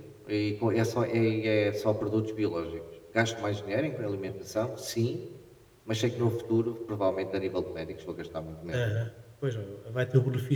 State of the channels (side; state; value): both; identical; correlation 1.00